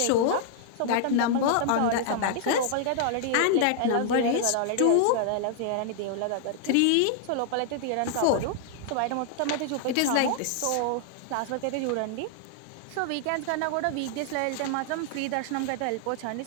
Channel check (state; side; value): different; both; correlation 0.00